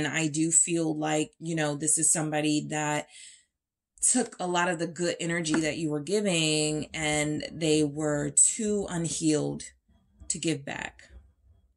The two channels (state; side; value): identical; both; correlation 1.00